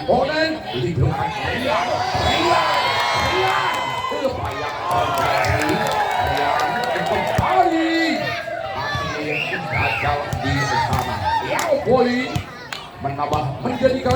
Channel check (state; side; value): identical; both; correlation 1.00